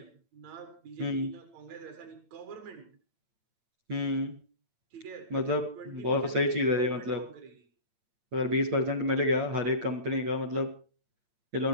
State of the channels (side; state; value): left; late; 8.8 ms